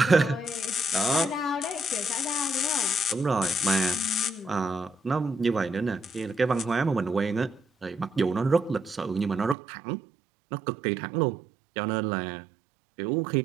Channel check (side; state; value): left; drops out; at 9.6 s